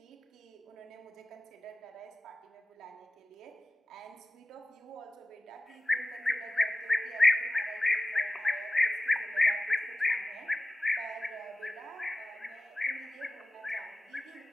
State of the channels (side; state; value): both; normal; correlation 0.96